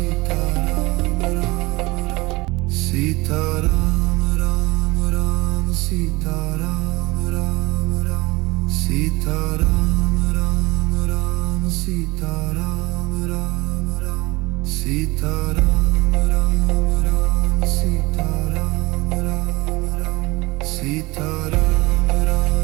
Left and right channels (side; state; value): left; quieter; 22.4 dB